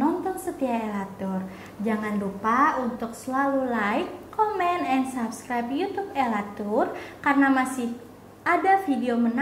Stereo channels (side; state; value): both; identical; correlation 1.00